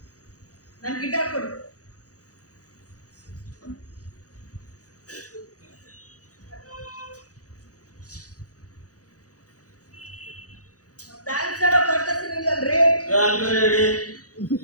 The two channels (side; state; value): right; late; 0.67 ms